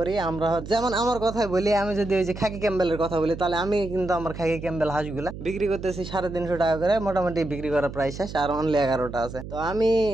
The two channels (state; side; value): noise; right; hum, 11 dB below the sound